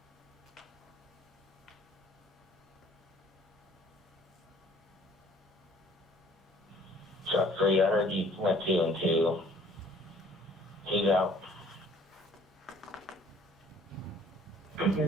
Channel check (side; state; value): both; normal; correlation 0.56